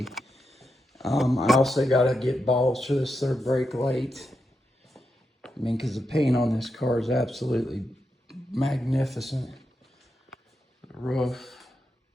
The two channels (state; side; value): normal; both; correlation 0.86